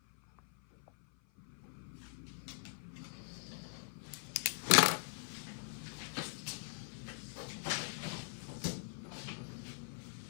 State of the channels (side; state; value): right; silent; 50 dB below the other